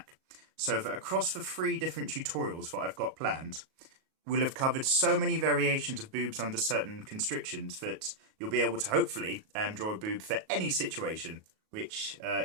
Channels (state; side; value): late; left; 38 ms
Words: So that across the 3 different tutorials that I've got planned, we'll have covered so many variations of boobs under certain constrictions that you'll be able to hopefully draw a boob for any situation, which